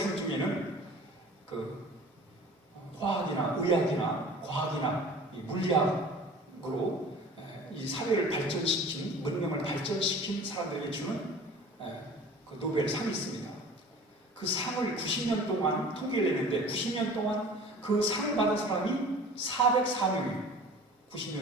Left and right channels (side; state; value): both; normal; correlation 0.43